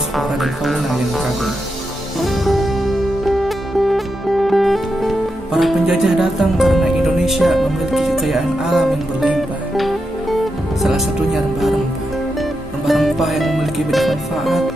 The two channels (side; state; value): both; normal; correlation 0.86